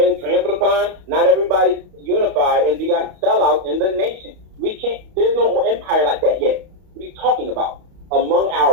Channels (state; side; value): late; left; 31 ms